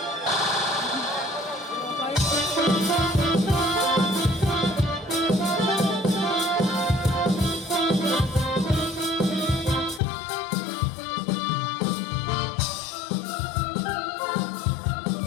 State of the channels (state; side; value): drops out; right; at 10.0 s